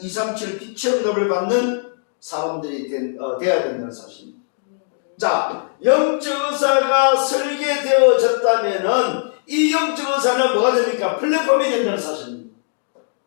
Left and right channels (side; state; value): right; silent; digital silence